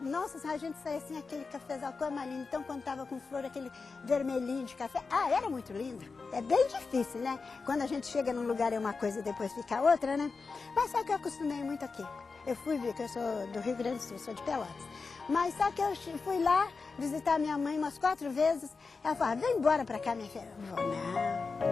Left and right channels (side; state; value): right; quieter; 4.5 dB